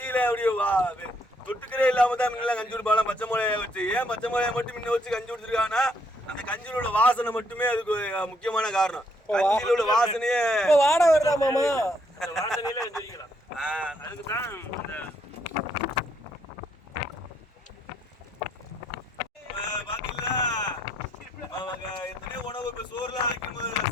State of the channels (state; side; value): normal; both; correlation 0.71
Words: அப்படியே தொட்டுக்கிறே இல்லாம தான் முன்னெல்லாம் கஞ்சி குடிப்பாங்க பச்சை மிளகாய வச்சு. ஏன் பச்சை மிளகாய மட்டும் முன்ன வச்சு கஞ்சி குடிச்சிருக்காங்கன்னா, அந்த கஞ்சியில உள்ள வாசனை மட்டுமே அதுக்கு முக்கியமான காரணம். கஞ்சியில உள்ள வாசனையே வாட வருதா மாமா, வாசனையில வச்சிருக்கலாம். அதுக்கு தான் பாத்தீங்களா எத்தனையோ உணவு. இப்போ சோறுலாம் வைக்கும்,